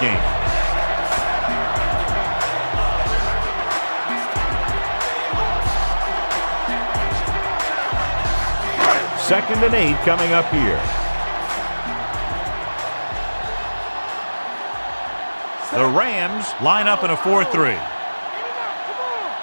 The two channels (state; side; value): inverted; both; correlation -1.00